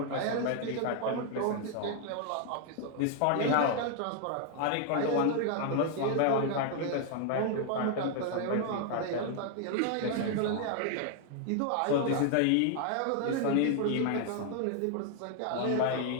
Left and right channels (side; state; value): both; different; correlation 0.00